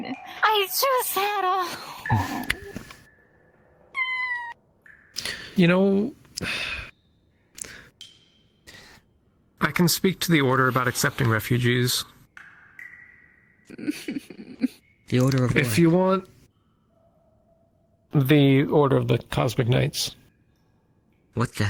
I just had a. You know, I can speak to the Order about accepting refugees. The Order of If what? you want the Order of the Cosmic Knights. What the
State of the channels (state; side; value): identical; both; correlation 1.00